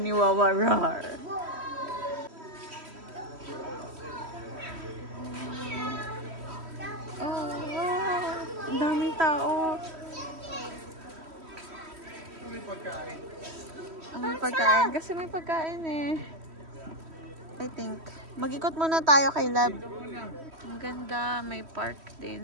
ni Wawa, rar. Ang daming tao. May pagkain. May pagkain. Kasi may pagkain eh. I think. Mag-ikot muna tayo kay Lab. Ang ganda. May park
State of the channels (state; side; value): late; left; 3.1 ms